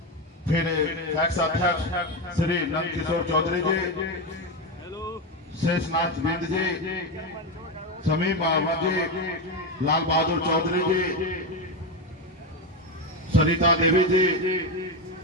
फिर एक्स अध्यक्ष श्री नंद किशोर चौधरी जी, शेषनाथ बिंद जी, समीम अहमद जी, लाल बहादुर चौधरी जी, सरिता देवी जी,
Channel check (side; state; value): both; normal; correlation 0.13